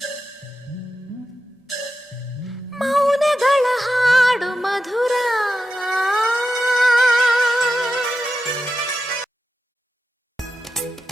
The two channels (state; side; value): normal; both; correlation 0.90